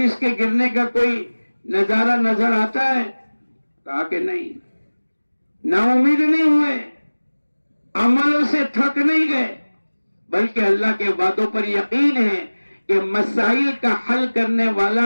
کے گرنے کا کوئی نظارہ نظر آتا ہے؟ کہا کہ نہیں۔ نا امید نہیں ہوئے، عملوں سے تھک نہیں گئے، بلکہ اللہ کے وعدوں پر یقین ہے کہ مسائل کا حل کرنے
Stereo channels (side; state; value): both; inverted; correlation -1.00